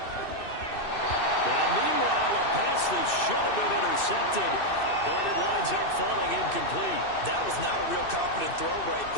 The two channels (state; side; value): late; right; 2.6 ms